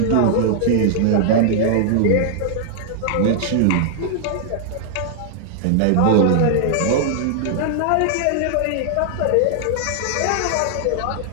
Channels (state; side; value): different; both; correlation -0.01